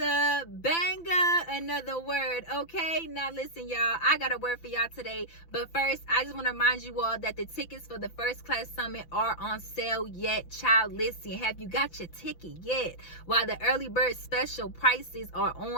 banger, another word. Okay, now listen, y'all, I got a word for y'all today, but first I just want to remind you all that the tickets for the First Class Summit are on sale yet. Child, listen, have you got your ticket yet? While the early bird special prices are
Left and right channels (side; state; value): right; late; 5.9 ms